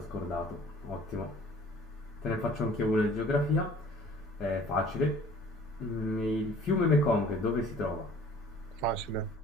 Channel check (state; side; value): normal; both; correlation 0.51